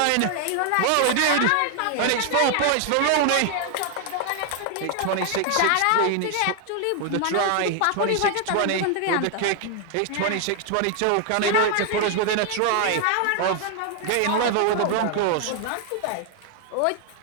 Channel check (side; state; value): both; different; correlation 0.00